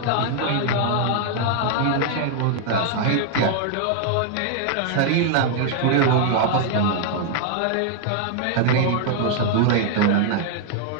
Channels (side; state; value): both; different; correlation 0.00